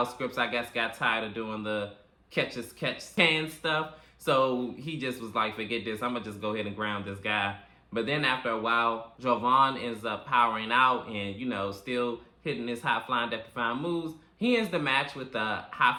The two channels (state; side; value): identical; both; correlation 1.00